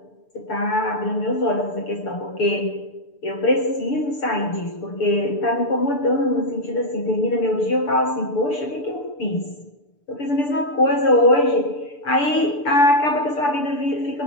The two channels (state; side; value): late; right; 6.8 ms